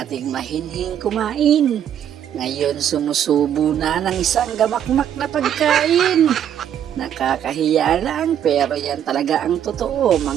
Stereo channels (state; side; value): quieter; left; 9.8 dB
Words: mahinhing kumain, ngayon sumusubo na ng isang gamakmak na pagkain. Nakakahiya lang pero yan talaga ang totoo